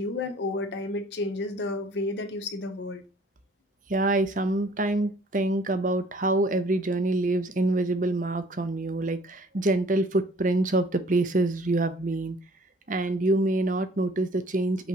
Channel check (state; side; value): normal; both; correlation 0.55